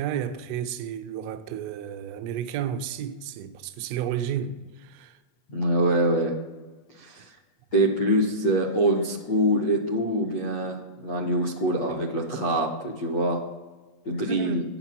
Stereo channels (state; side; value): late; right; 8.3 ms